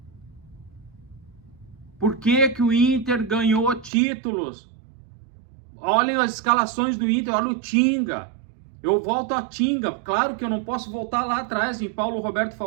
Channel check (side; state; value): left; drops out; at 3.9 s